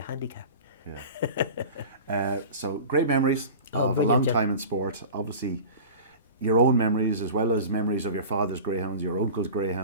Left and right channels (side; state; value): both; inverted; correlation -0.36